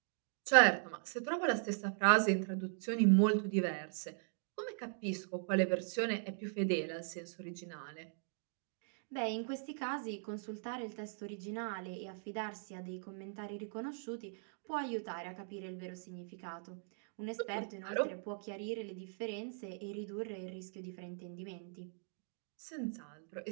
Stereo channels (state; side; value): silent; left; digital silence